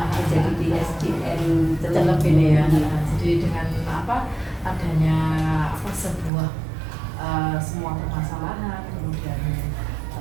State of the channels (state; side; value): drops out; left; at 6.3 s